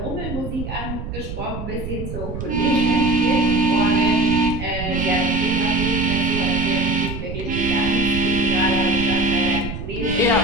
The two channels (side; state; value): right; noise; rumble, 7 dB below the sound